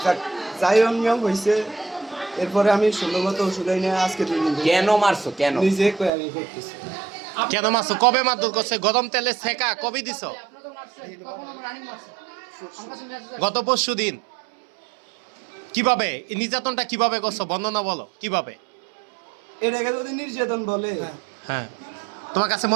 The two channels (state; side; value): drops out; left; at 6.1 s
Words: যাই অনিয়ম হয়েছে, এরপরে আমি সুন্দর মতো ওষুধ এনে আজকে 2 দিন কেন মারছো? কেন নিজে আমি করতেছি। কেন মারছো? কবে মারধর করছে? গরম তেলে সেকা কবে দিছো? গত পরশু দিন। কিভাবে এই নির্যাতনটা কিভাবে করছো, বর্ণনা বলো কিভাবে? এটাকে যদি নির্যাতন বলে, হ্যাঁ, তোমার কাছে